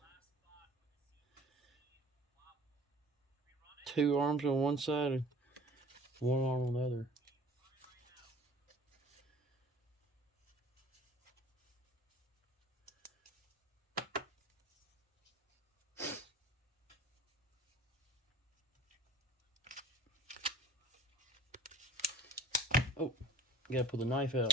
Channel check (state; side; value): normal; both; correlation 0.48